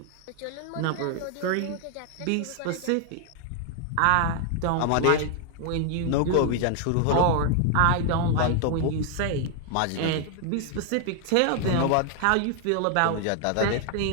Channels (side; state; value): both; different; correlation 0.00